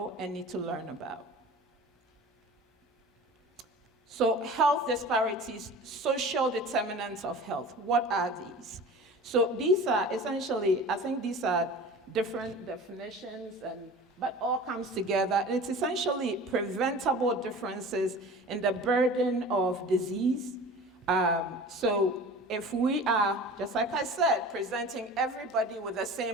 and need to learn about. So health disparities, social determinants of health, what are these? So these are essentially, I think these are different definitions, but all comes together. It's essentially preventable differences in the burden of disease. So if we are, just like I said, presenting everybody with the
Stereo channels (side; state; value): both; normal; correlation 0.39